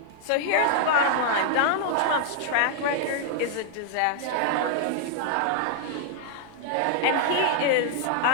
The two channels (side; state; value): both; different; correlation -0.01